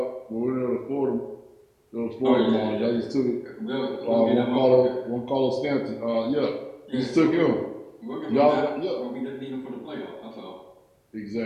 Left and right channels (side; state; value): both; identical; correlation 1.00